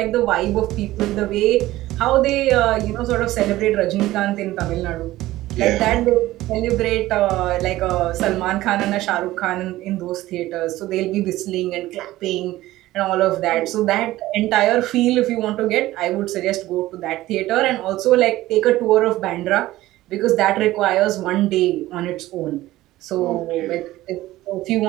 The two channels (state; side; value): quieter; left; 16.4 dB